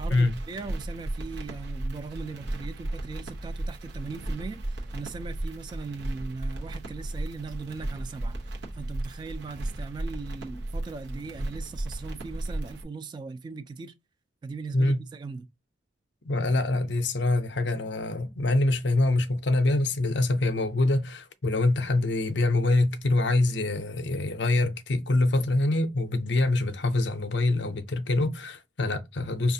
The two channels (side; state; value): both; normal; correlation 0.82